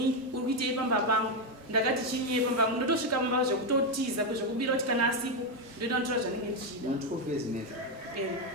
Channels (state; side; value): normal; both; correlation 0.06